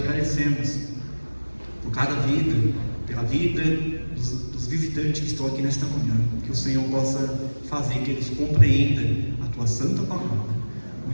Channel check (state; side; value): inverted; both; correlation -1.00